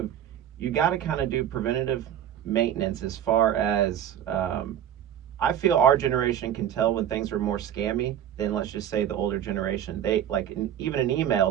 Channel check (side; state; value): left; quieter; 10.3 dB